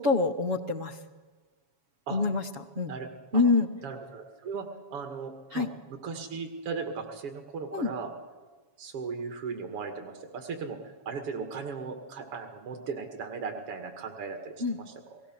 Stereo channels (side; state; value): left; late; 7.2 ms